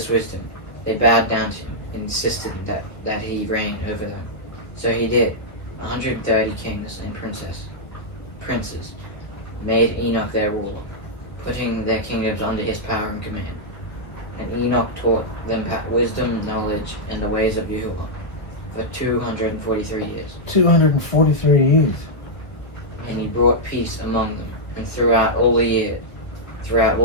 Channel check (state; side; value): late; right; 1.0 ms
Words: wisdom, they bowed down to him and insisted that he reign over them. So he did. 130 kings and princes made Enoch their ruler, putting their kingdoms under his power and command. And Enoch taught them wisdom, knowledge, and the ways of Yahuwah for 243 years. 243 years. And he brought peace among them, and throughout all the